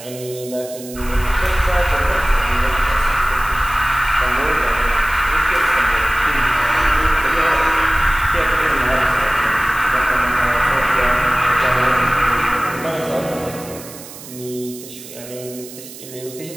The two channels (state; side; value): noise; right; hiss, 15 dB below the sound